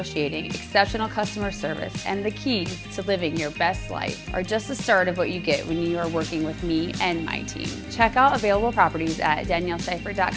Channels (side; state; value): both; identical; correlation 1.00